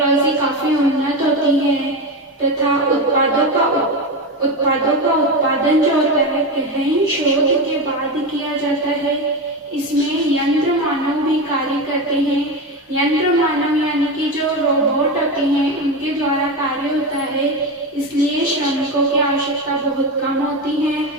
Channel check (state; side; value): normal; both; correlation 0.18